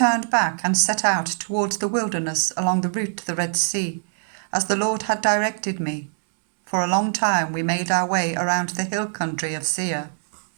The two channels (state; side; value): silent; left; digital silence